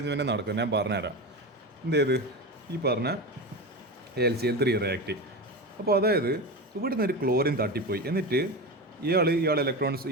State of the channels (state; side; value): normal; both; correlation 0.23